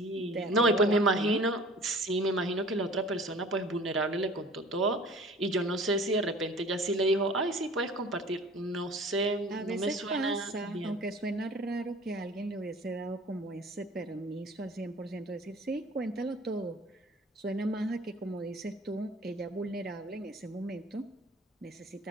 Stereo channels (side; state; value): both; normal; correlation 0.46